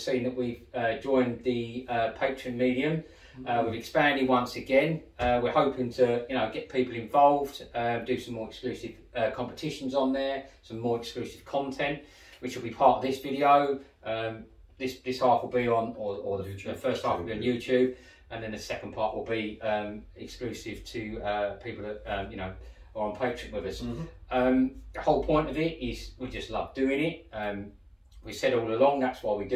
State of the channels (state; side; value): identical; both; correlation 1.00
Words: that we've joined the Patreon medium. We've expanded once again. We're hoping to, get people involved, do some more exclusive competitions on there, some more exclusive content, which will be part of this video. This half will be on, or the first half will be on YouTube, and then the second part will be exclusive to people that are on Patreon with us. The whole point of it is we just love doing it. We said all along that's why we